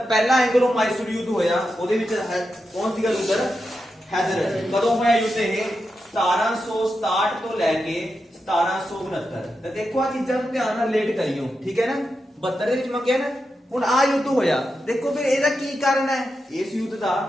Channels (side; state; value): both; normal; correlation 0.88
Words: ਪਹਿਲਾ ਐਂਗਲੋ ਮਾਈਸੂਰ ਯੁੱਧ ਹੋਇਆ, ਉਹਦੇ ਵਿੱਚ ਕੌਣ ਸੀਗਾ ਲੀਡਰ? ਹੈਦਰ ਅਲੀ। ਕਦੋਂ ਹੋਇਆ ਯੁੱਧ ਇਹ? 1767 ਤੋਂ ਲੈ ਕੇ 1769। ਤਾਂ ਦੇਖੋ ਆ ਚੀਜ਼ਾਂ ਨੂੰ ਧਿਆਨ ਨਾਲ ਰਿਲੇਟ ਕਰਿਓ, ਠੀਕ ਹੈ ਨਾ। 72 ਦੇ ਵਿੱਚ ਮੈਂ ਕਿਹਾ ਨਾ ਹੁਣ ਆ ਯੁੱਧ ਹੋਇਆ। ਦੇਖੋ ਫਿਰ ਇਹਦਾ ਕੀ ਕਾਰਨ ਹੈ? ਇਸ ਯੁੱਧ ਦਾ